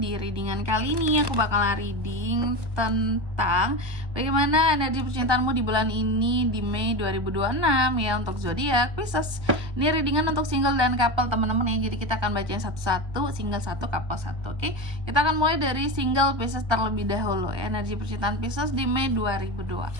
readingan kali ini aku bakalan reading tentang bagaimana energi percintaanmu di bulan ini di Mei 2026 ya untuk zodiak Pisces. Ini readingan untuk single dan couple teman-teman ya. Jadi kita akan bacain satu-satu, single satu, couple satu. Oke. Kita akan mulai dari single Pisces terlebih dahulu. Energi percintaan Pisces di Mei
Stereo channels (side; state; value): left; late; 1.2 ms